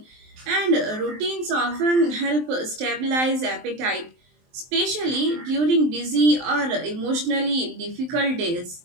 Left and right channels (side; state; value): left; late; 23 ms